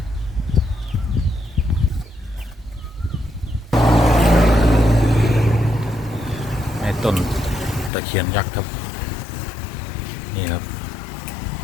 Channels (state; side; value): drops out; right; at 7.9 s